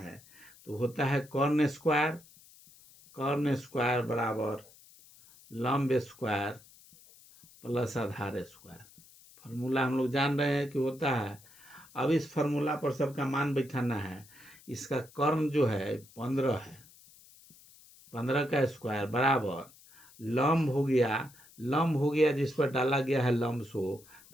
तो होता है कॉर्न स्क्वायर बराबर लंब स्क्वायर प्लस आधार स्क्वायर। फार्मूला हम लोग जान रहे हैं कि होता है। अब इस फार्मूला पर सबका मान बैठाना है। इसका कर्ण जो है 15 है, 15 का स्क्वायर बराबर लंब हो गया जिस पर डाला गया है लंब सो,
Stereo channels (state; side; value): noise; left; hiss, 24 dB below the sound